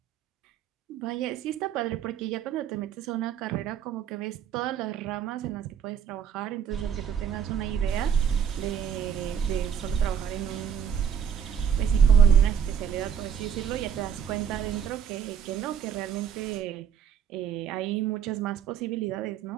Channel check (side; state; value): left; quieter; 8.2 dB